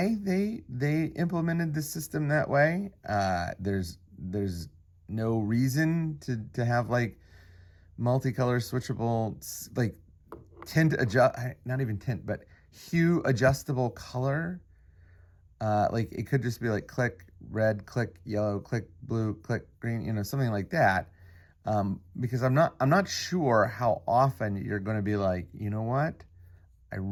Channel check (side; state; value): both; identical; correlation 1.00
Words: they implemented the system that way. There's no reason to have like multicolor switchable, like tint adjust, not even tint, but hue adjustable color. Like it could just be like click red, click yellow, click blue, click green, something like that. Because I'm not sure how often you're going to be like, you know what? I